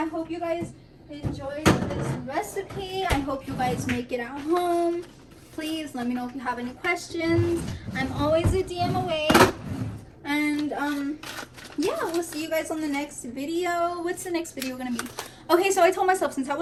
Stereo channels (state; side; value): identical; both; correlation 1.00